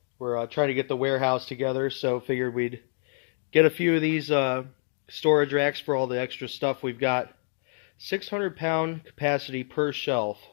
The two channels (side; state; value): right; silent; digital silence